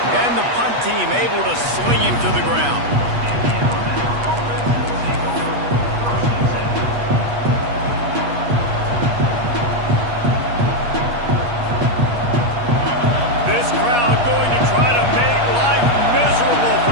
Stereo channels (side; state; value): left; late; 8.3 ms